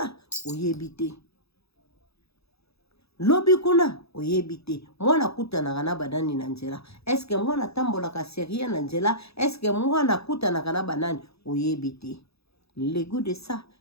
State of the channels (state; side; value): late; right; 0.78 ms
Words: oyebi te mwana kutanaka na banani na nzela eske mwana tambolaka serie na nzela eske mwana kutanaka na banani oyebi te le goût de ça